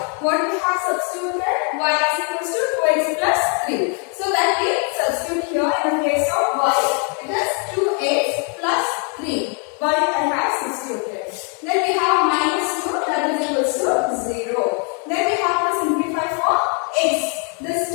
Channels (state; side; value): quieter; right; 39.4 dB